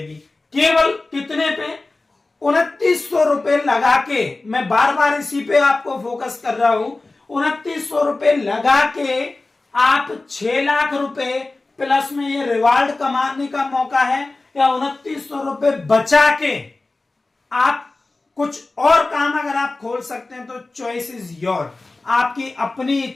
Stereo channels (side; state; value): right; quieter; 3.3 dB